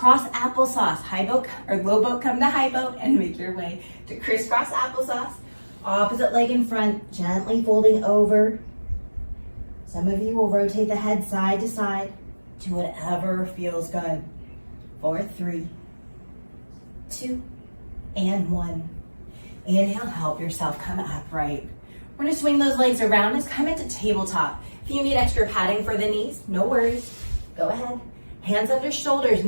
applesauce. High boat or low boat, come to high boat and make your way to crisscross applesauce. Opposite leg in front, gently folding over. Some of you will rotate the head side to side to whatever feels good. 4, 3, 2, and 1. Inhale, help yourself come upright. We're gonna swing those legs around us, come into tabletop. If you need extra padding for the knees, no worries, go ahead. Hands under shoulders,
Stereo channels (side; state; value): both; inverted; correlation -1.00